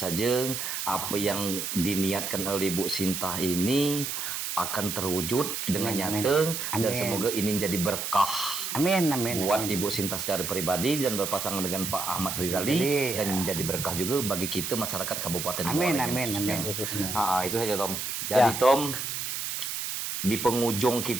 apa yang diniatkan oleh Ibu Sinta ini akan terwujud dengan nyata, dan semoga ini jadi berkah. Amin. Buat Ibu Sinta secara pribadi dan berpasangan dengan Pak Ahmad Rizali, dan menjadi berkah juga bagi kita masyarakat Kabupaten Muara Enim. Itu saja Tom. Jadi Tom, di penghujung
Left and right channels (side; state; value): right; noise; hiss, 4 dB below the sound